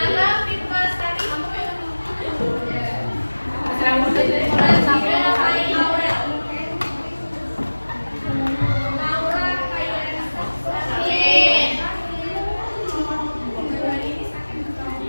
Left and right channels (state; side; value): inverted; both; correlation -1.00